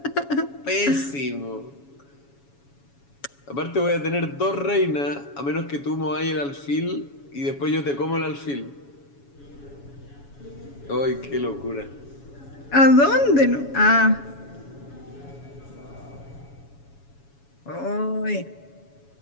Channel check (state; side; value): late; right; 7.2 ms